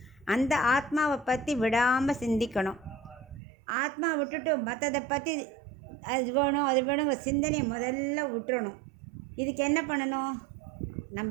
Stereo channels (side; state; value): left; drops out; at 3.4 s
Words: அந்த ஆத்மாவை பற்றி விடாமல் சிந்திக்கணும். ஆத்மா விட்டுட்டு மற்றதை பற்றி அது வேணும் அது வேணுங்கிற சிந்தனையை முதல்ல விட்டுறணும். இதுக்கு என்ன பண்ணணும்?